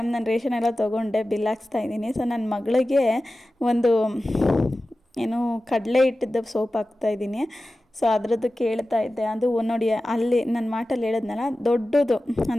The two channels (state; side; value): normal; both; correlation 0.95